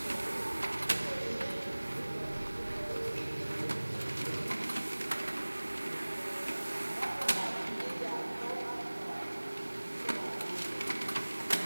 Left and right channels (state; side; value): inverted; both; correlation -1.00